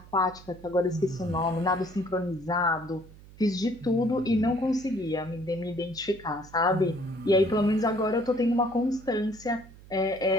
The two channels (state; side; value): noise; right; hum, 21 dB below the sound